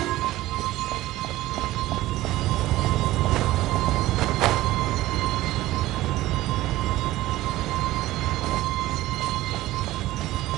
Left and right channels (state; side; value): quieter; left; 16.5 dB